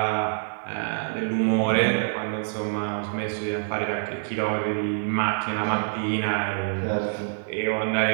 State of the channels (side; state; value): left; silent; digital silence